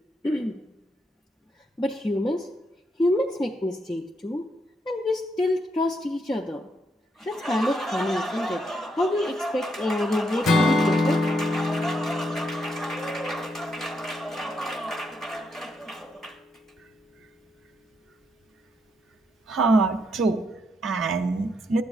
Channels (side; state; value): both; normal; correlation 0.78